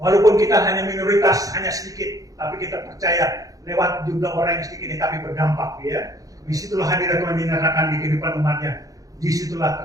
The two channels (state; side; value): late; left; 0.17 ms